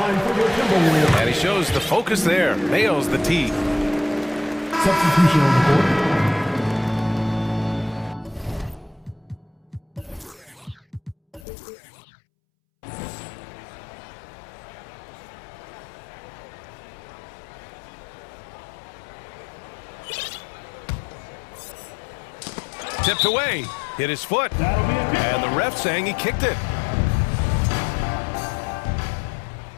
for the Timberwolves. And he shows the focus there. Nails the tee. Substitution on the court. Tipped away. Hit his foot. And the ref saying he kicked it.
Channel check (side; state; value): right; drops out; at 11.4 s